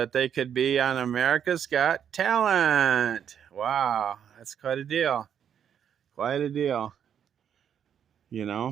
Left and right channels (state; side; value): quieter; left; 8.7 dB